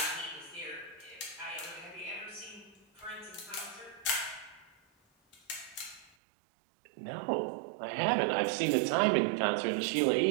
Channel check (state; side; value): drops out; left; at 6.1 s